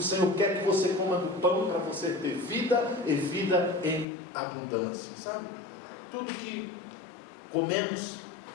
quer que você coma do pão para você ter vida e vida em abundância. Sabe? Tudo que comemos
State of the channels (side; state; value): right; drops out; at 4.0 s